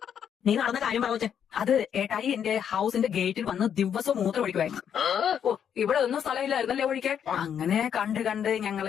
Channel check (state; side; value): quieter; right; 8.5 dB